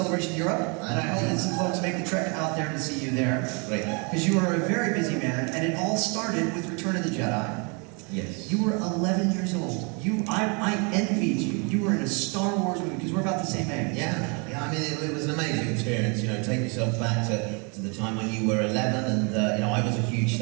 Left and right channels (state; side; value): quieter; left; 33.5 dB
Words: Europe. And I hope that some folks make the trek out there to see you there. Great. Because you are a very busy man, and it all started with Return of the Jedi. Yes. You were 11 years old. I envied you. You were in a Star Wars movie because we're about the same age. Yeah, I mean, it was an amazing experience, you know, take yourself back to the time when you were 11 and, you know, I was a huge